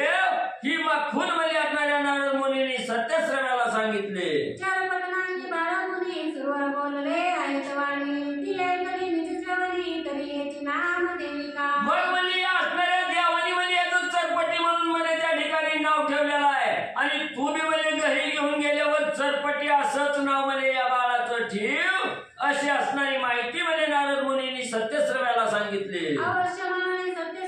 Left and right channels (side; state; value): both; identical; correlation 1.00